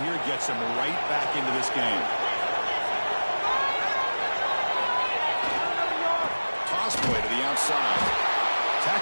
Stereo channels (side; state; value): both; inverted; correlation -1.00